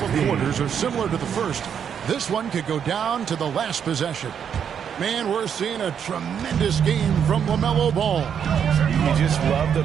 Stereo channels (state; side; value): quieter; left; 8.0 dB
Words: quarters are similar to the first, this one could go down to the last possession. Man, we're seeing a tremendous game from LaMelo Ball. You just love the